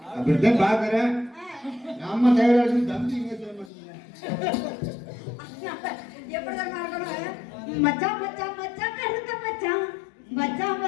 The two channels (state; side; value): drops out; right; at 3.7 s